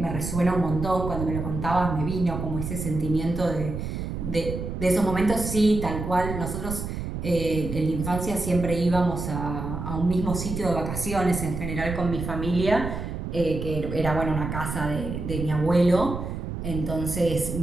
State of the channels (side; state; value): right; noise; rumble, 5 dB below the sound